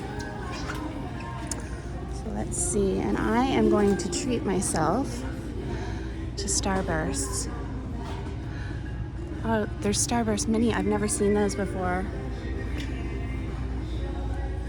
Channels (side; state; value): both; identical; correlation 1.00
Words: So let's see, and I am going to treat myself to Starbursts. Oh, there's Starburst Mini. I've never seen those before.